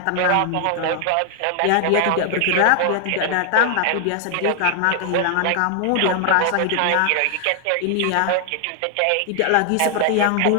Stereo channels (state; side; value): different; both; correlation 0.00